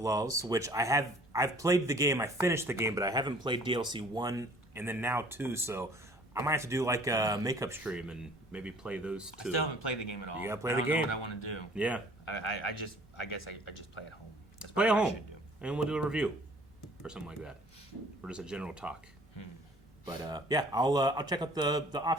which I've played the game. I finished the game, but I haven't played DLC 1 and then now 2. So I might have to do like a makeup stream and maybe play those two. I still haven't played the game at all. You gotta play I the don't know game. what I want to do. Yeah, I guess I just play at home. That's play at what I home, should do. and we'll do a review or something like that, or just a general talk. But yeah, I'll check out the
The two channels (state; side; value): normal; both; correlation 0.53